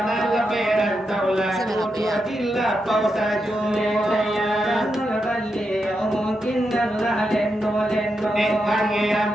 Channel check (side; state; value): both; normal; correlation 0.85